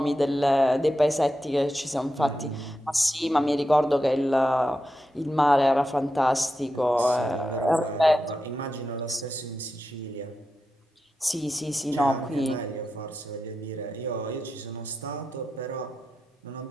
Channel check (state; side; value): normal; both; correlation 0.89